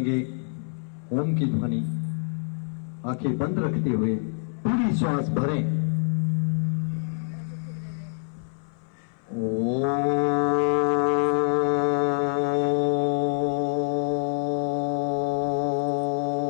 ओम की ध्वनि आंखें बंद रखते हुए पूरी श्वास भरें।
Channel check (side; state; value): right; silent; 61 dB below the other